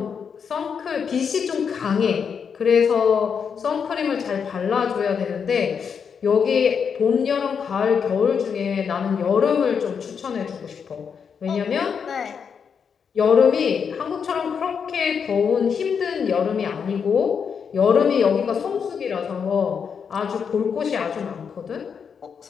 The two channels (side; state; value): right; quieter; 6.7 dB